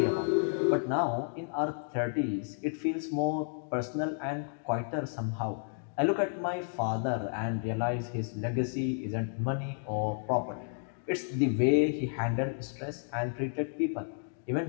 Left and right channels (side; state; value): right; silent; digital silence